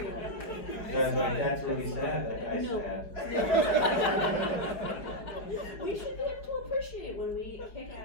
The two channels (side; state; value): right; late; 4.7 ms